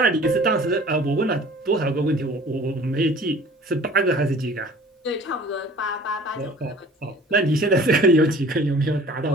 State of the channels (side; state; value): both; normal; correlation 0.48